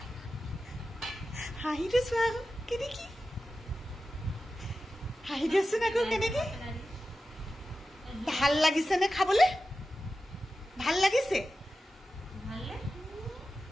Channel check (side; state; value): both; normal; correlation 0.93